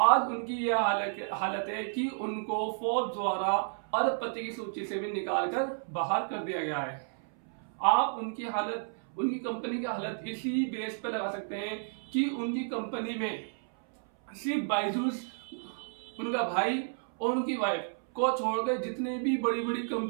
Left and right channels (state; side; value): silent; left; 57 dB below the other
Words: उनकी यह हालत है कि उनको फोर्ब्स द्वारा अरबपति की सूची से भी निकालकर बाहर कर दिया गया है। आप उनकी हालत, उनकी कंपनी की हालत इसी बेस पे लगा सकते हैं कि उनकी कंपनी में सिर्फ बायजूस, उनका भाई और उनकी वाइफ को छोड़कर जितने भी बड़ी बड़ी